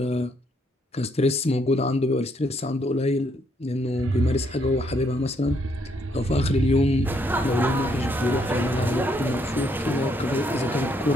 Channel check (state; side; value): normal; both; correlation 0.72